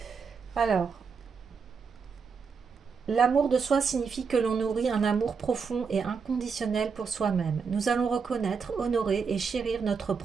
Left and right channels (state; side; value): quieter; left; 5.6 dB